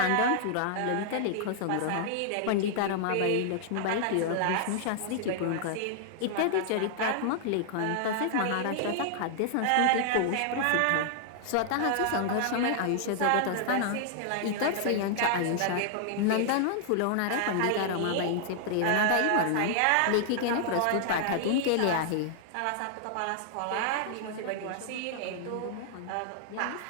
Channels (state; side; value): different; both; correlation -0.01